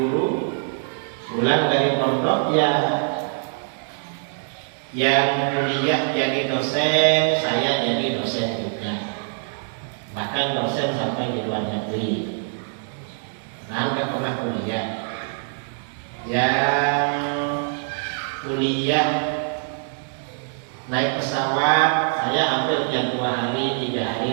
pulang dari pondok ya, yang kuliah jadi dosen, saya jadi dosen juga. Bahkan dosen sampai di luar negeri. Nah, nggak pernah kuliah. Yang kuliah naik pesawat, saya hampir tiap 2 hari, 3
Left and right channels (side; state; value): left; silent; 63 dB below the other